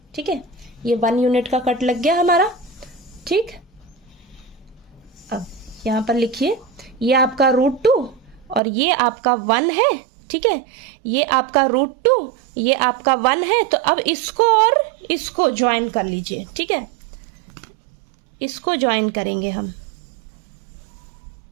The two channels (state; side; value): drops out; left; at 8.6 s